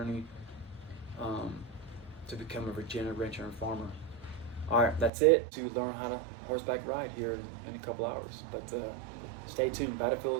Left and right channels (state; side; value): drops out; left; at 5.1 s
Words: to become a Virginia rancher and farmer. All right, that's it to learn how to horseback ride here in a couple hours. But stay tuned,